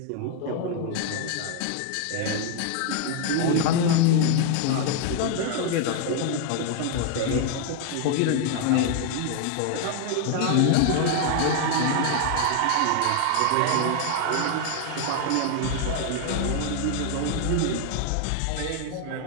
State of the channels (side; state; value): both; different; correlation 0.00